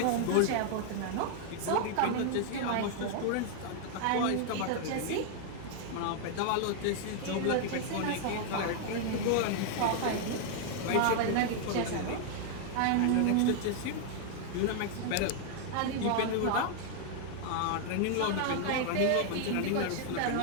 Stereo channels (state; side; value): different; both; correlation 0.00